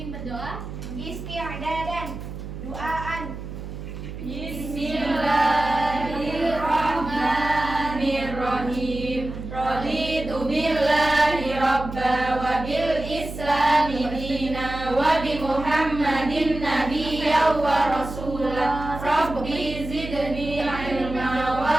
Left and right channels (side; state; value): right; noise; hum, 9 dB below the sound